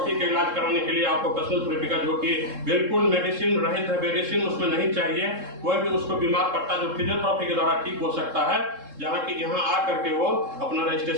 के इलाज कराने के लिए ऑक्यूपेशनल थेरेपी का, जो कि बिल्कुल मेडिसिन रहित है, मेडिसिन उसमें नहीं चाहिए, कोई भी उसको बीमार पड़ता जो फिजियोथेरेपी के द्वारा ठीक हो सकता है, जहाँ की यहाँ आ करके वो अपना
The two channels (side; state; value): left; late; 3.7 ms